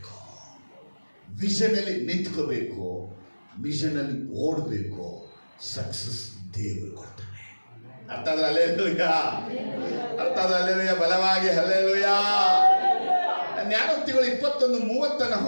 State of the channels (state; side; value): inverted; both; correlation -1.00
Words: ವಿಷನಲ್ಲಿ ನಿಂತ್ಕೋಬೇಕು, ಮಿಷನಲ್ಲಿ ಓಡಬೇಕು. ಸಕ್ಸಸ್ ದೇವರು ಕೊಡ್ತಾನೆ. ಅರ್ಥ ಆದ್ರೆ ಹಲ್ಲೆಲೂಯಾ, ಅರ್ಥ ಆದ್ರೆ ಹಲ್ಲೆಲೂಯಾ, ಬಲವಾಗಿ ಹಲ್ಲೆಲೂಯಾ. ಜ್ಞಾನೋಕ್ತಿಗಳು 21:30